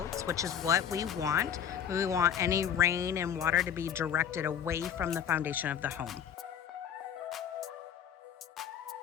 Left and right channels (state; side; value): quieter; right; 8.7 dB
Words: which is what we want. We want any rain and water to be directed away from the foundation of the home.